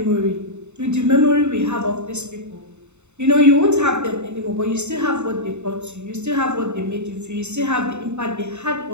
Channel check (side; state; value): left; late; 0.82 ms